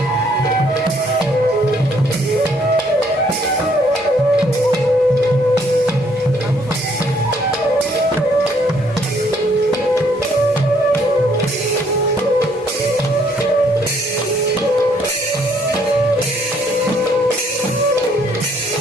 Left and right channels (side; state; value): both; normal; correlation 0.66